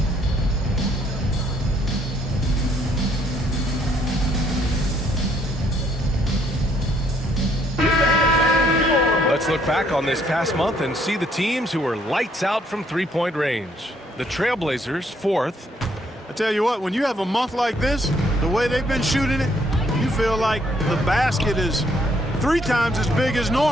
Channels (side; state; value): both; normal; correlation 0.68